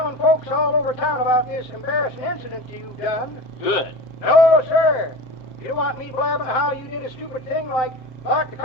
folks all over town about this embarrassing incident you've done. Good. No, sir. You don't want me blabbing how you did a stupid thing like lock the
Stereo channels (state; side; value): late; right; 7.6 ms